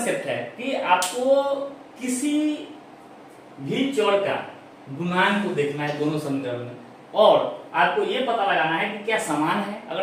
है कि आपको किसी भी चर का गुणांक को देखना है दोनों समीकरण में, और आपको ये पता लगाना है कि क्या समान है।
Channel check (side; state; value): both; identical; correlation 1.00